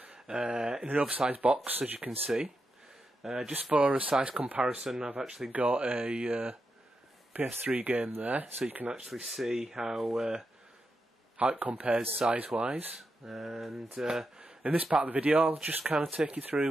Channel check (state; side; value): normal; both; correlation 0.86